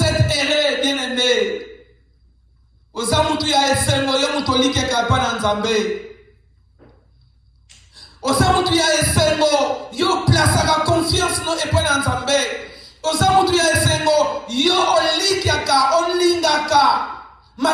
êtes heureux, bien-aimés. Osamutu ya esengo yo mutolike kapana nzambe. Osamutu ya esengo yo plasaka confiance no epana nzambe. Osamutu ya esengo yo olikiaka olingaka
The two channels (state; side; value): identical; both; correlation 1.00